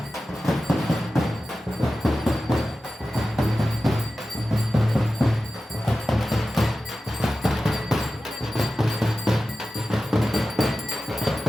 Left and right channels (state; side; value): normal; both; correlation 0.94